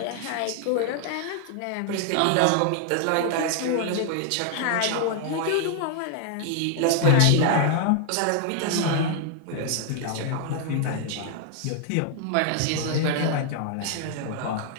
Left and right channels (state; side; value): different; both; correlation 0.00